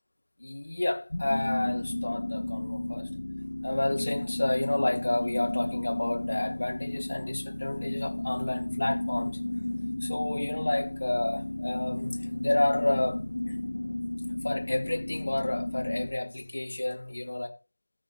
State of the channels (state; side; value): inverted; both; correlation -1.00